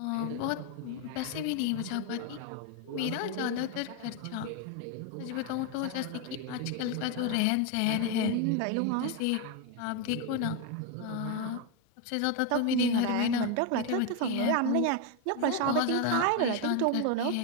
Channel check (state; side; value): different; both; correlation 0.02